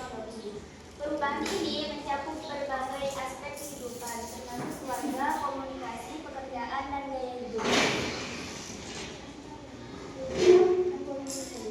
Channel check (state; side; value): identical; both; correlation 1.00